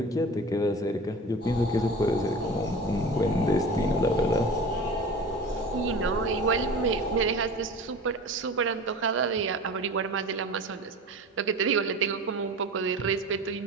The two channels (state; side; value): normal; both; correlation 0.35